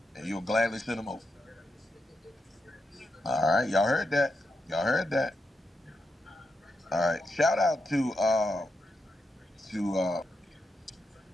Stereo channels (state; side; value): normal; both; correlation 0.85